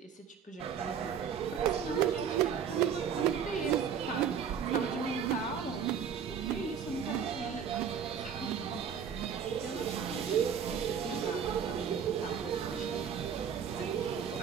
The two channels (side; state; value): left; quieter; 7.6 dB